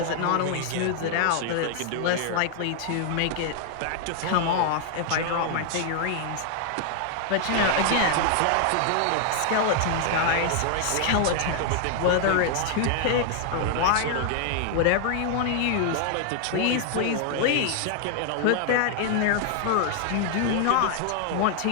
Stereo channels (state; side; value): different; both; correlation 0.00